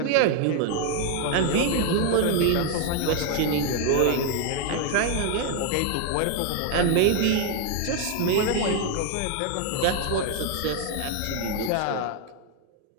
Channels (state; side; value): different; both; correlation 0.00